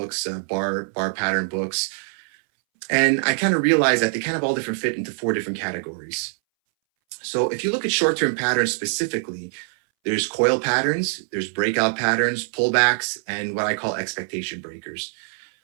bar pattern books, and I kind of realized that they kind of all different fit into 4 different categories. So if you look at short-term patterns specifically, there's coil patterns, there's breakout patterns, pullbacks, and what I call expectation breakers.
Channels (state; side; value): silent; left; 62 dB below the other